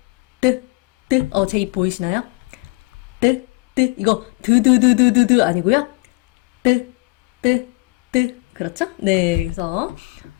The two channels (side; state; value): right; quieter; 25.3 dB